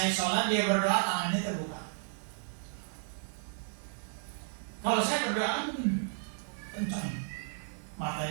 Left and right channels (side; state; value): left; silent; digital silence